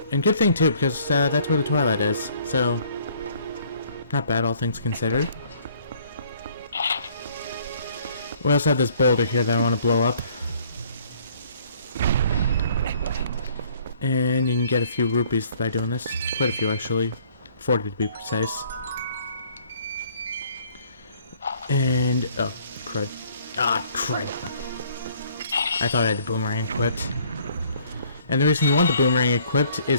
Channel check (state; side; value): inverted; both; correlation -0.59